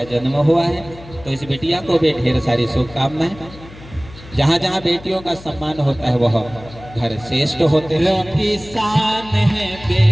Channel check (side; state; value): left; noise; hum, 18 dB below the sound